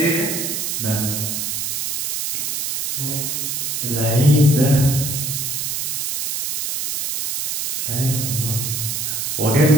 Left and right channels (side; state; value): right; noise; hiss, 1 dB below the sound